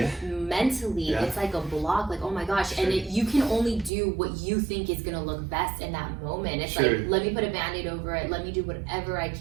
mentally, it's like a block. Like, oh my gosh! Sure. And you can only do what you think is gonna look best in that moment. It's Sure. like, let me put a Band-Aid over it. Let me do whatever I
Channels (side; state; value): left; drops out; at 3.9 s